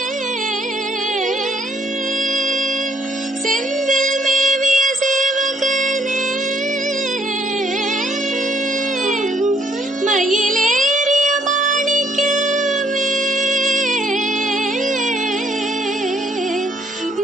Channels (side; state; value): both; normal; correlation 0.68